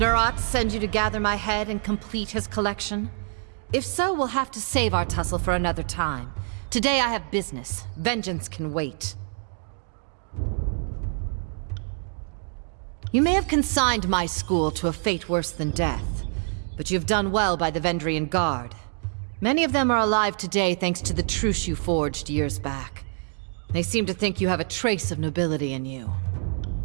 send you to gather my head and complete his collection? If so, we'll have to save our tussle for another time. Today I have business. Vengeance can wait. You may have consigned my school to a fate worse than death, but you've done well by the Vendrian Guard. Many of them are alive today thanks to the truce you forged years back. They seem to think you have a trace of nobility in you.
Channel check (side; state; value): left; silent; 57 dB below the other